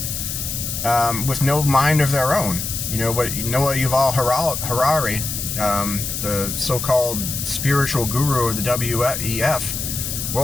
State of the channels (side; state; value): left; noise; hiss, 4 dB below the sound